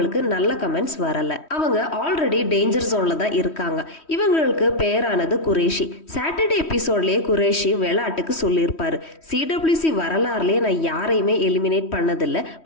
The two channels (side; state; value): right; late; 3.1 ms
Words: நல்ல கமெண்ட்ஸ் வரல. அவங்க ஆல்ரெடி டேஞ்சர் ஜோன்ல தான் இருக்காங்க. இவங்களுக்கு பேரானது குரேஷி. சாட்டர்டே எபிசோட்லயே குரேஷி விளையாட்டுக்கு சொல்லியிருப்பாரு, சிடபிள்யூசி வரலாறுலயே நான் யாரையுமே எலிமினேட் பண்ணதில்லை,